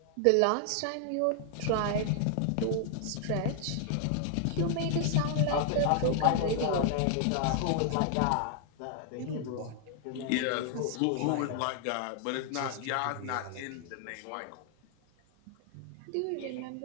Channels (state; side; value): different; both; correlation 0.00